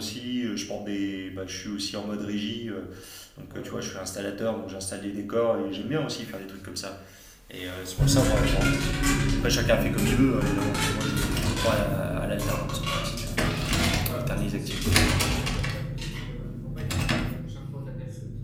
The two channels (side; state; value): both; identical; correlation 1.00